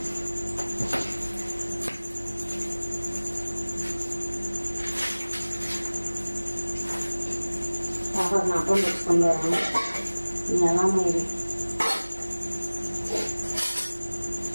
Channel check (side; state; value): both; inverted; correlation -1.00